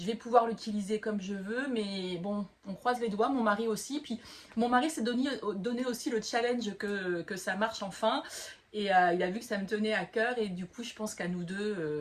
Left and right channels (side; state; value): both; identical; correlation 1.00